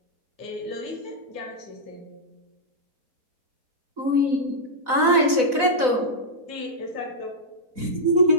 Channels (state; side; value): late; left; 4.0 ms